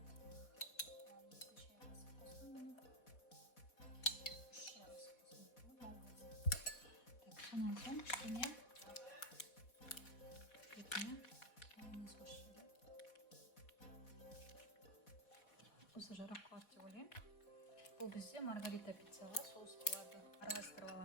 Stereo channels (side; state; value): right; late; 4.1 ms